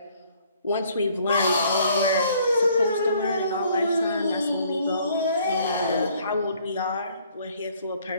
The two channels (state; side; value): inverted; both; correlation -0.61